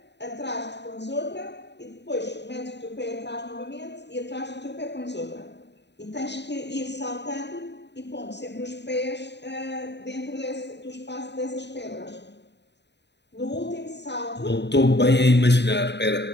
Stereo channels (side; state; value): right; late; 0.50 ms